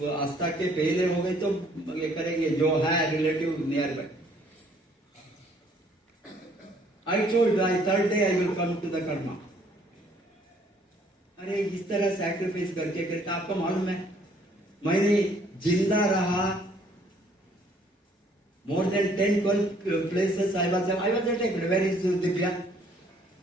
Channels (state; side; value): normal; both; correlation 0.62